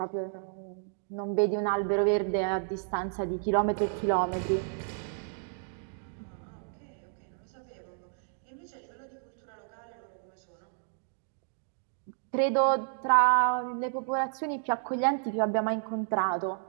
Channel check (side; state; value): left; silent; digital silence